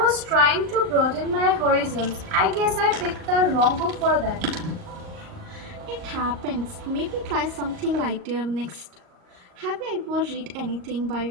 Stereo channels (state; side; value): late; left; 38 ms